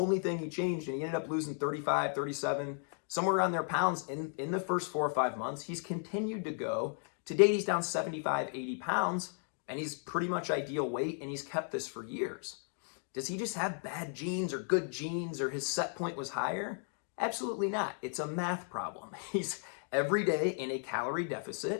thing he changed, and he ended up losing 35, 37, somewhere around there pounds in the first 4 or 5 months. He's continued to go. To date, he's down 75, 80 pounds, and he's pretty much ideal weight, and he's kept this for years. Does he just have bad genes or good genes, or his set point was higher? Absolutely not. It's a math problem. He's every day in a calorie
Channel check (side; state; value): right; silent; 54 dB below the other